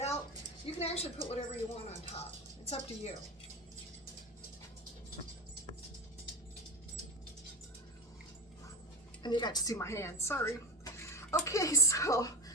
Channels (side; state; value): both; normal; correlation 0.24